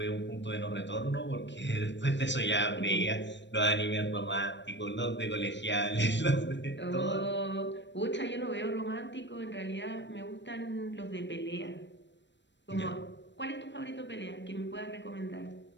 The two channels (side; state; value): right; late; 0.53 ms